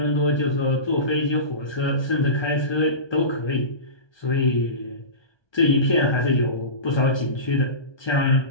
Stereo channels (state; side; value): late; right; 1.2 ms